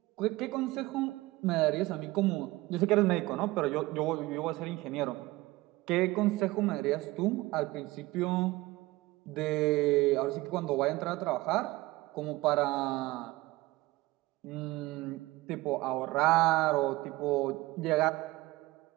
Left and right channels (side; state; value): left; quieter; 19.9 dB